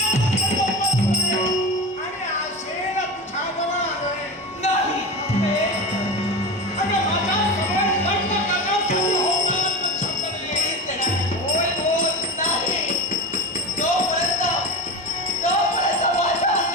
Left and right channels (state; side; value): normal; both; correlation 0.26